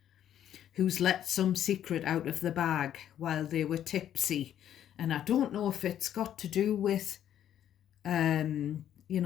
who's let some secret out of the bag while they were tipsy. And I don't know if it's got to do with,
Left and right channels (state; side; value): quieter; right; 10.6 dB